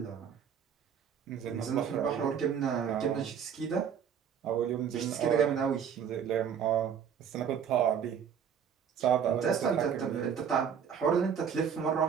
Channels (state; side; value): quieter; left; 7.8 dB